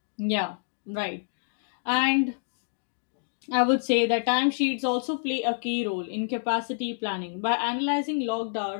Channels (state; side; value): silent; right; digital silence